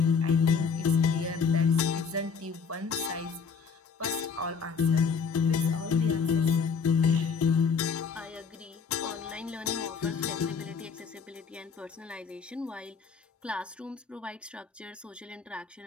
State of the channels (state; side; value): quieter; right; 5.7 dB